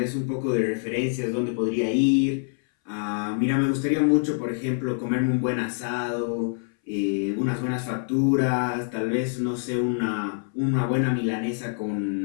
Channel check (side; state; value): right; silent; 60 dB below the other